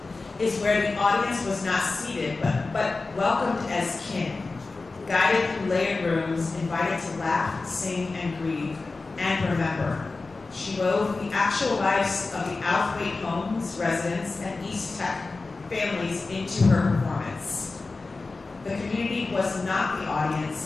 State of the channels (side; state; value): right; quieter; 3.7 dB